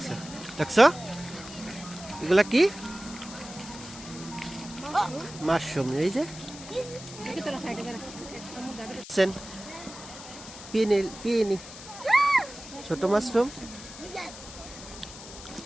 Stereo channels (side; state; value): left; noise; hiss, 14 dB below the sound